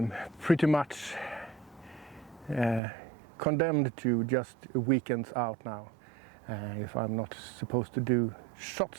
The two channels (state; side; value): drops out; left; at 2.8 s